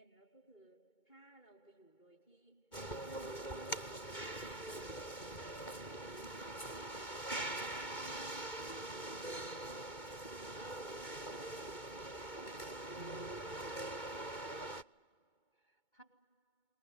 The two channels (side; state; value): right; late; 2.2 ms